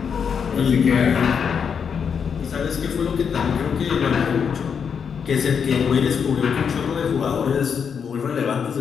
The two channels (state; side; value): quieter; right; 6.8 dB